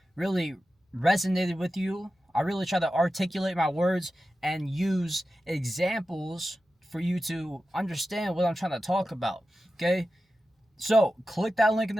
really resonated with you. I really try to articulate my words and use examples for you to understand what I'm trying to talk about, okay? So click that link in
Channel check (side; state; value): both; normal; correlation 0.92